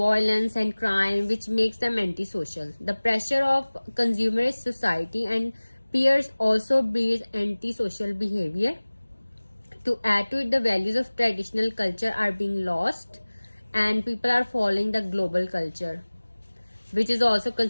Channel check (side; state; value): both; inverted; correlation -1.00